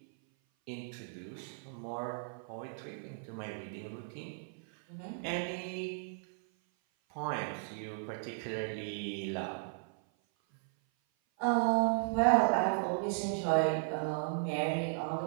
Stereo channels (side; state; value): left; silent; 54 dB below the other